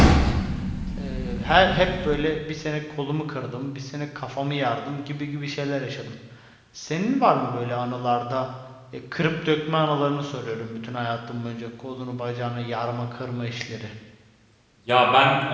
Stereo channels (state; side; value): identical; both; correlation 1.00